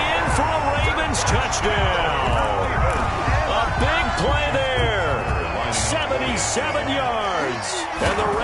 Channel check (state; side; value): identical; both; correlation 1.00